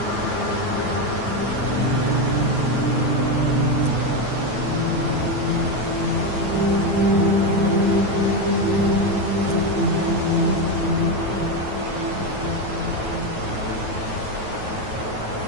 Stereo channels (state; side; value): late; left; 9.3 ms